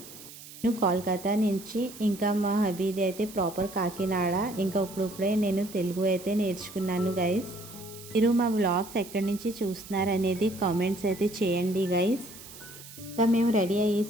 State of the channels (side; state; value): right; noise; hiss, 16 dB below the sound